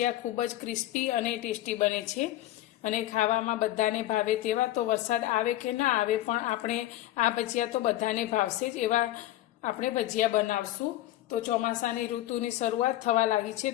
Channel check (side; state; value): right; quieter; 14.9 dB